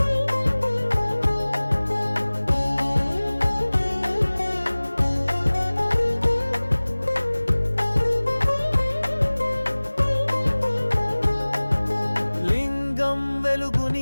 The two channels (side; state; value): both; inverted; correlation -1.00